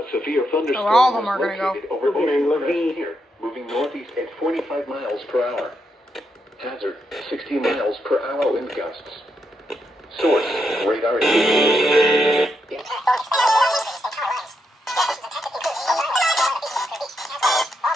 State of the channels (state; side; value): normal; both; correlation 0.81